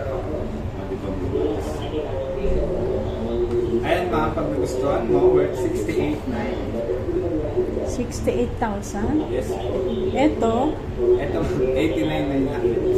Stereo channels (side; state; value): both; identical; correlation 1.00